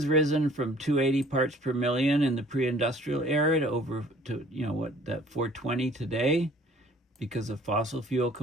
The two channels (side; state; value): both; normal; correlation 0.54